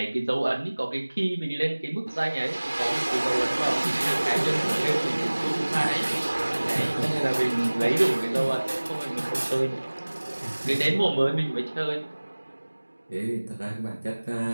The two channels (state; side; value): inverted; both; correlation -1.00